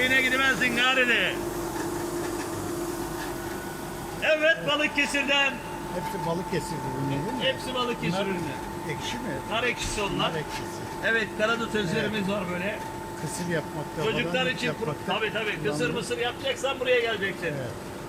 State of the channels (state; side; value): identical; both; correlation 1.00